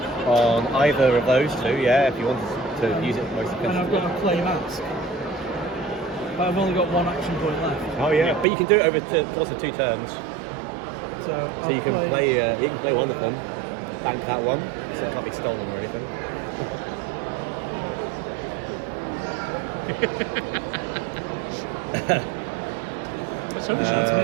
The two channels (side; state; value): left; drops out; at 8.5 s